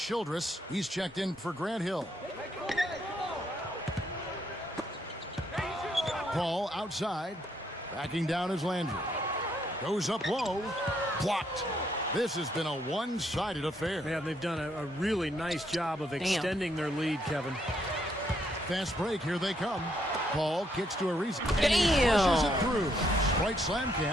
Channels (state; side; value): normal; both; correlation 0.73